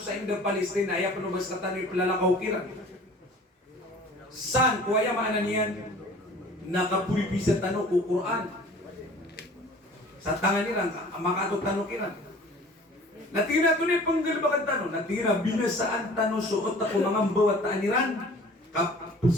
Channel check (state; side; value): normal; both; correlation 0.47